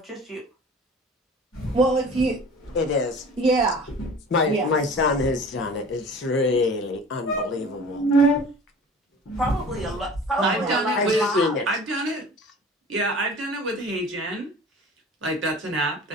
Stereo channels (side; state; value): both; normal; correlation 0.42